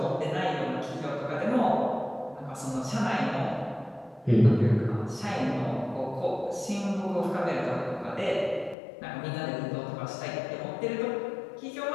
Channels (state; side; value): drops out; right; at 8.8 s